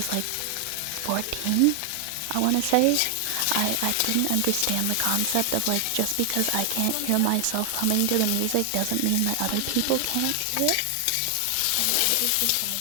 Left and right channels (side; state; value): both; different; correlation 0.00